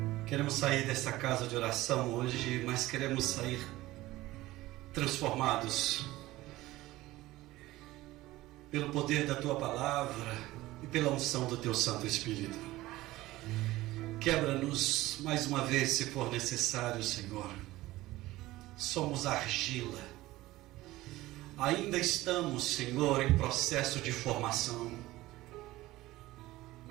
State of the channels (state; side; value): quieter; left; 17.6 dB